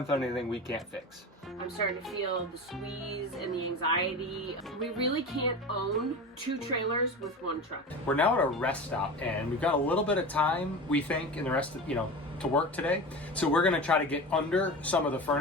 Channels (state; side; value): normal; both; correlation 0.29